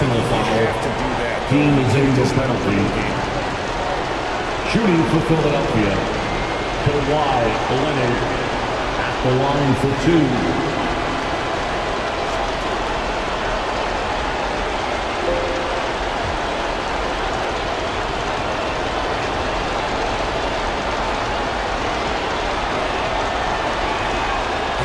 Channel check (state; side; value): identical; both; correlation 1.00